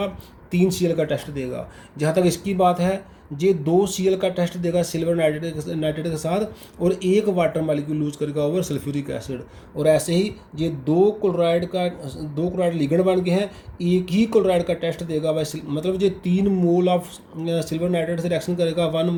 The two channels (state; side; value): identical; both; correlation 1.00